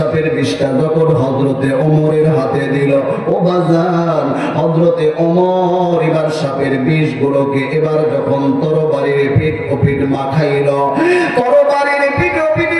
বিষটা যখন হযরতে ওমরের হাতে দিল, ও বাজান, হযরতে ওমর এবার সাপের বিষগুলোকে এবার যখন তরবারির পিঠ ও পিঠ মাখাইল, তরবারির পিঠ ও পিঠে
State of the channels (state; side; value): identical; both; correlation 1.00